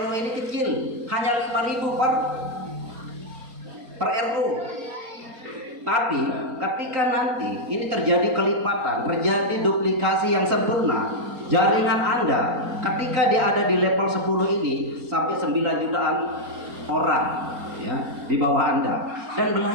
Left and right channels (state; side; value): late; left; 4.3 ms